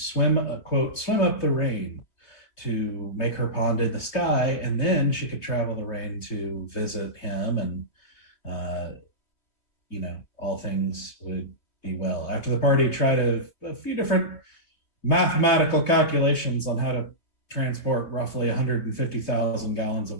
up the rain to make her pond in the sky, and then she could travel the rain to visit him, and all things would be well. After the party tried a few different mathematical calculations on how to transport roughly 150,000 gallons of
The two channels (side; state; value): right; late; 3.1 ms